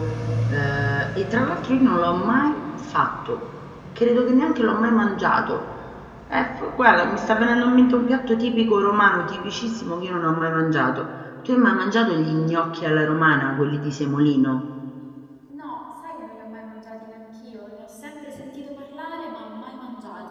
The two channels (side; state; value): both; identical; correlation 1.00